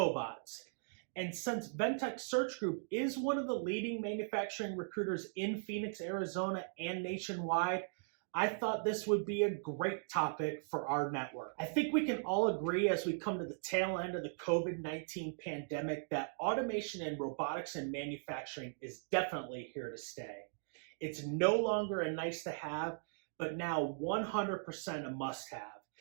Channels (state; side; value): silent; left; digital silence